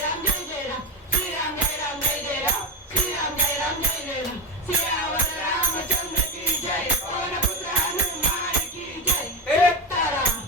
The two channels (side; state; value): both; normal; correlation 0.18